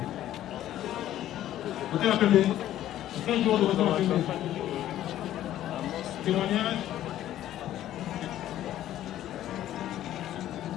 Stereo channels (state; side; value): quieter; right; 12.7 dB